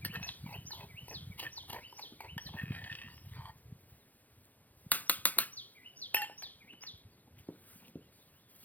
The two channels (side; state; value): right; late; 0.081 ms